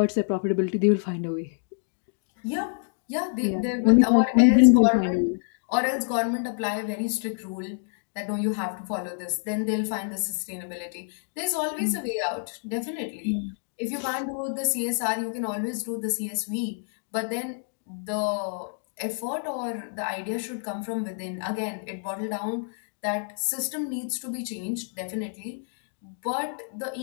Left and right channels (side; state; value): right; silent; 60 dB below the other